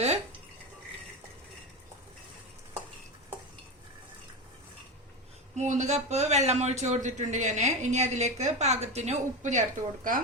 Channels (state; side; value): normal; both; correlation 0.19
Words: മൂന്ന് കപ്പ് വെള്ളം ഒഴിച്ചു കൊടുത്തിട്ടുണ്ട് ഞാൻ. ഇനി അതിലേക്ക് പാകത്തിന് ഉപ്പ് ചേർത്ത് കൊടുക്കാം.